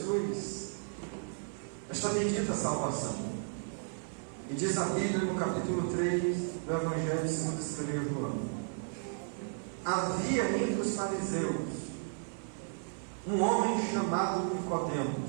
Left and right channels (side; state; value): left; silent; 55 dB below the other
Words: esta bendita salvação. E diz a Bíblia no capítulo 3 do Evangelho segundo escreveu João: havia entre os fariseus um homem chamado